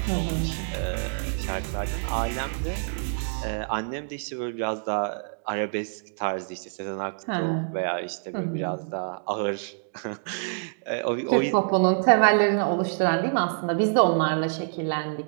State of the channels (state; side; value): silent; left; digital silence